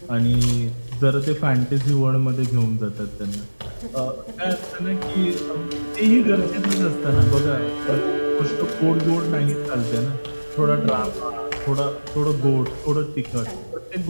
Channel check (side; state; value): both; inverted; correlation -1.00